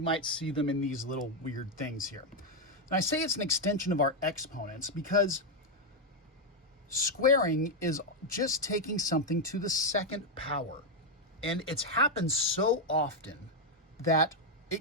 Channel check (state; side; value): normal; both; correlation 0.01